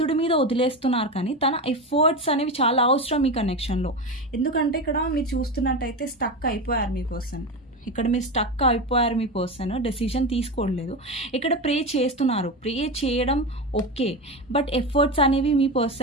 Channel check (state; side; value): normal; both; correlation 0.20